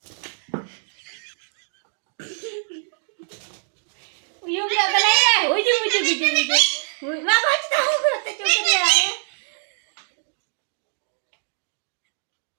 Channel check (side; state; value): left; silent; digital silence